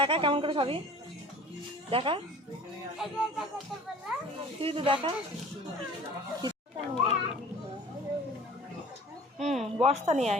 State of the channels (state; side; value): normal; both; correlation 0.45